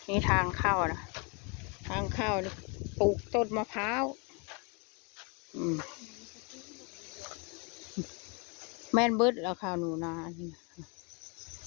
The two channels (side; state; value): right; quieter; 33.1 dB